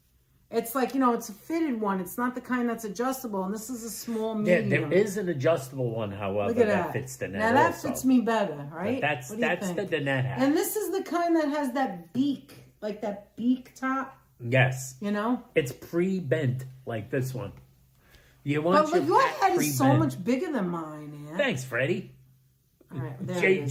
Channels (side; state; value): both; identical; correlation 1.00